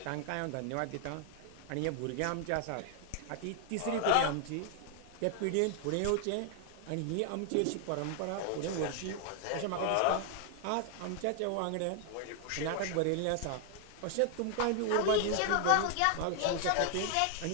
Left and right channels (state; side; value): different; both; correlation 0.00